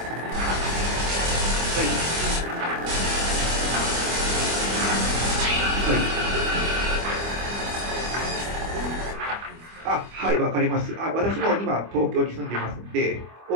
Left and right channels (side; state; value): left; late; 25 ms